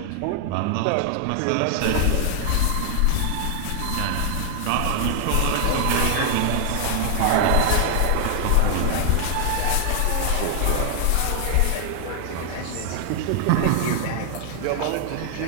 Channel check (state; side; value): different; both; correlation 0.00